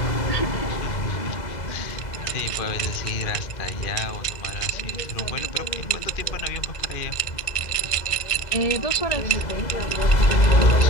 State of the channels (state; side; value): late; right; 1.6 ms